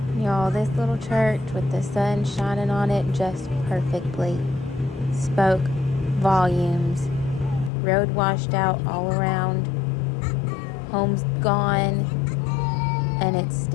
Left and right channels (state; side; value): drops out; right; at 7.7 s